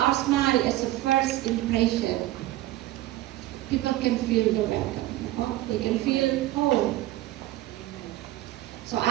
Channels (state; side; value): quieter; left; 15.9 dB